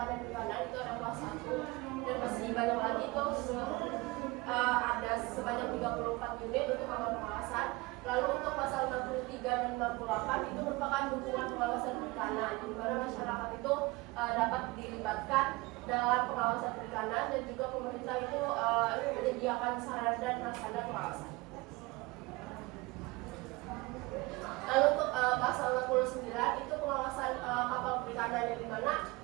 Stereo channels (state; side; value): quieter; left; 23.2 dB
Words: dan perikanan itu ada kelas 1 dan masih banyak lagi itu ada sebanyak 34 unit untuk kapal pengawasan. Lalu untuk pasal 63 dan 68 itu merupakan dukungan pengawasan perikanan, di mana masyarakat itu dapat dilibatkan dalam pengawasan perikanan dan juga pemerintah itu menyediakan sarana dan prasarana pengawasan. Lalu untuk pasal 69 itu pengawasan kapal perikanan, yang dimana